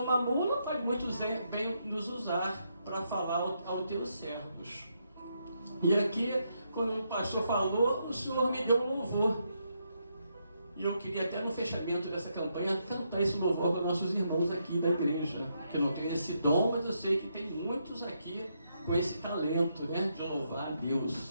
uma mula, pode muito bem nos usar para falar aos teus servos. E aqui, quando o pastor falou, o Senhor me deu um louvor. E eu queria até no fechamento dessa campanha cantar esse louvor com nossos irmãos aqui da igreja, que não tem esse dom, mas eu sei que tem muitos aqui com esse talento, né, de louvar a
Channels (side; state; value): both; inverted; correlation -0.79